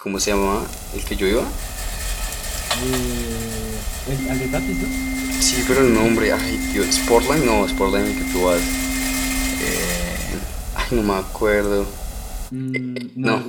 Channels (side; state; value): both; identical; correlation 1.00